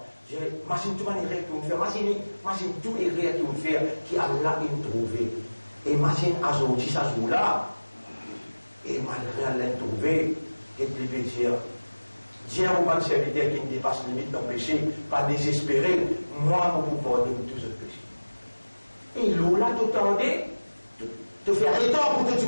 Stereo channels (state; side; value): inverted; both; correlation -1.00